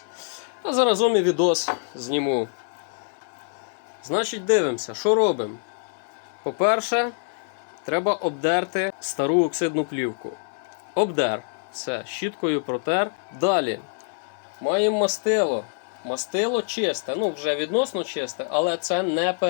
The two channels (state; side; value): silent; right; digital silence